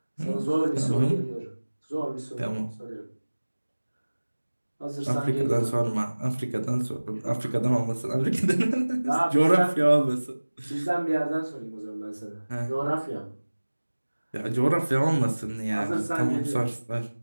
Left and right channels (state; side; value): inverted; both; correlation -1.00